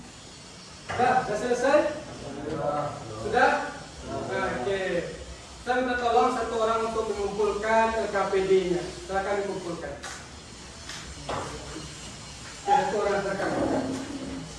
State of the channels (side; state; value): both; identical; correlation 1.00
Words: Sudah selesai? Sudah? Nah, oke. Saya minta tolong satu orang untuk mengumpulkan KPD-nya. Silakan dikumpulkan. Satu orang silakan.